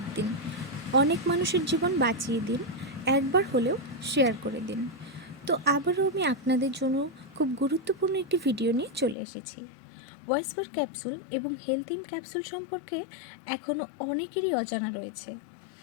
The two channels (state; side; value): drops out; right; at 9.2 s